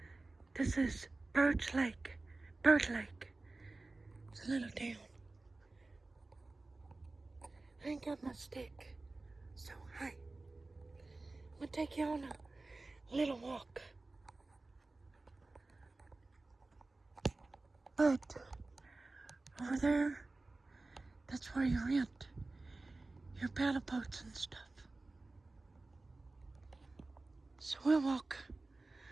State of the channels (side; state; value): left; quieter; 3.2 dB